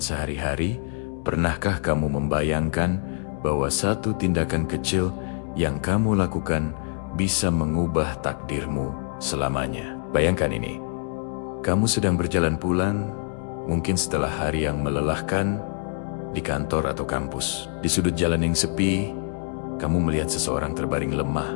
sehari-hari, pernahkah kamu membayangkan bahwa satu tindakan kecil yang kamu lakukan bisa mengubah takdirmu selamanya? Bayangkan ini, kamu sedang berjalan pulang, mungkin setelah hari yang melelahkan di kantor atau kampus. Di sudut jalan yang sepi, kamu melihat seseorang terbaring lemah,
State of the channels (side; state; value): right; silent; 62 dB below the other